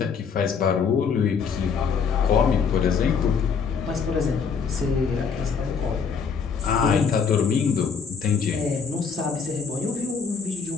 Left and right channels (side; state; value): right; quieter; 6.0 dB